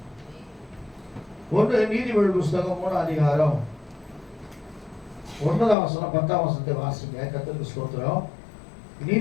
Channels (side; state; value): right; drops out; at 5.8 s